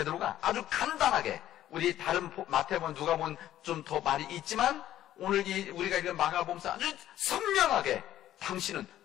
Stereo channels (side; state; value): right; quieter; 12.5 dB